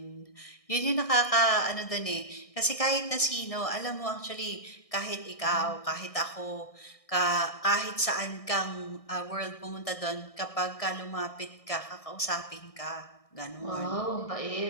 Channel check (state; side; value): late; right; 1.6 ms